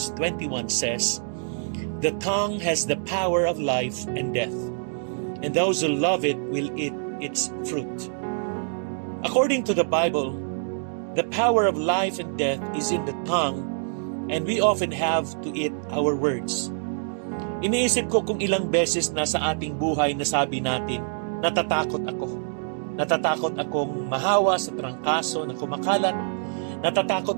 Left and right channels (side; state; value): left; silent; digital silence